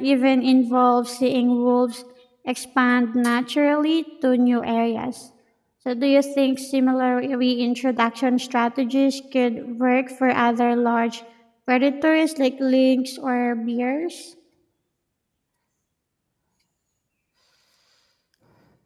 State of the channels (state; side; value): identical; both; correlation 1.00